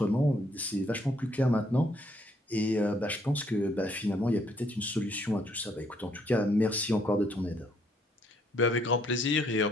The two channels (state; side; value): normal; both; correlation 0.69